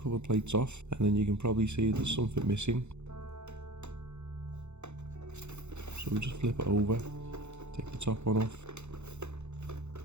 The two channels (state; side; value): late; left; 0.82 ms